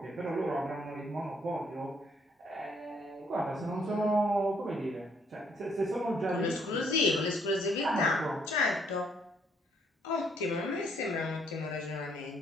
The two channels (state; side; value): normal; both; correlation 0.68